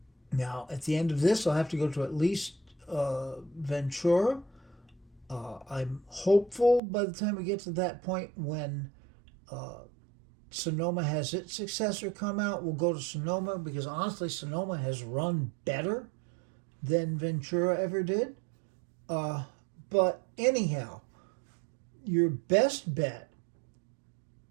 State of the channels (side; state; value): left; drops out; at 6.8 s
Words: Now, at the end of this, I'll have to go to at least Ventura. I'm hopeful by the time we get to that point when Sonoma has its successor come out, we'll go to Sonoma, because honestly, Sonoma has run better than Ventura ever did. But anyhow, your best bet,